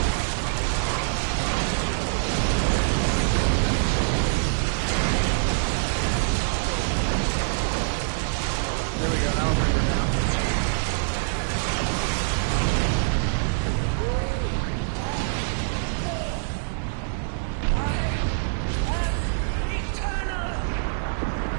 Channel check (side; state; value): left; silent; digital silence